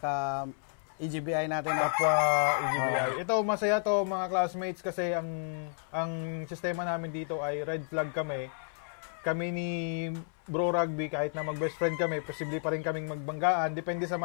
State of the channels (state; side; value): silent; right; 57 dB below the other